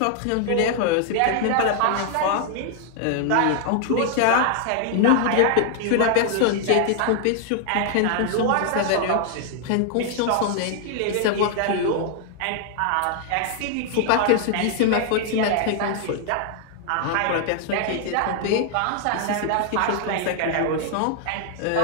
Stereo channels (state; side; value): different; both; correlation 0.00